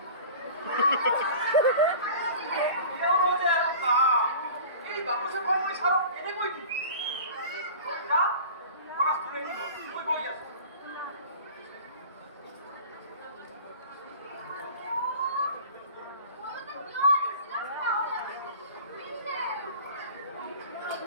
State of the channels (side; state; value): both; inverted; correlation -0.40